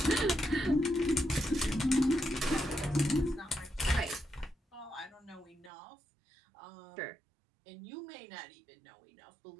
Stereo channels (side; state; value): left; drops out; at 5.7 s